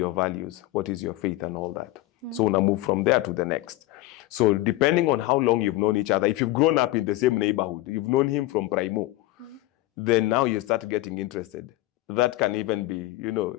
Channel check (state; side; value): quieter; right; 17.5 dB